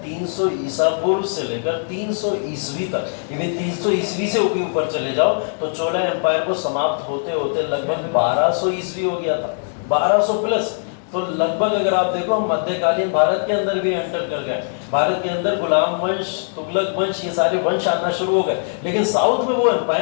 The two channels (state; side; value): silent; right; 65 dB below the other